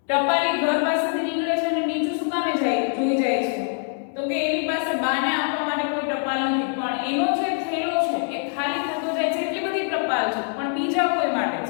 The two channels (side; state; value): right; silent; 63 dB below the other